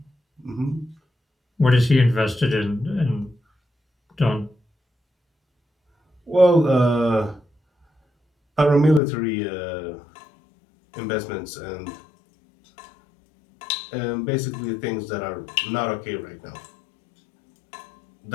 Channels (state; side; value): drops out; right; at 9.0 s